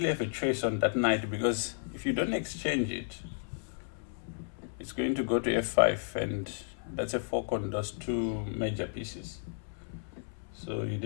have a choice on that knight, because if you don't exchange it, it's going to go to f5, and that's a fork on those two major pieces. So you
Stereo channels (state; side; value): silent; right; 56 dB below the other